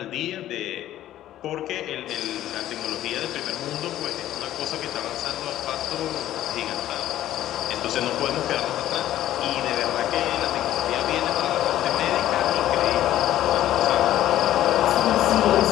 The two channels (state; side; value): quieter; right; 13.0 dB